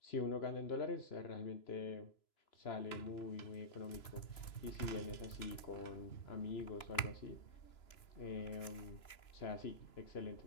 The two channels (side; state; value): right; late; 3.0 ms